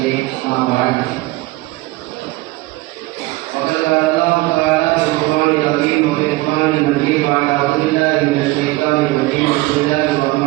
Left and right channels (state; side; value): quieter; left; 20.3 dB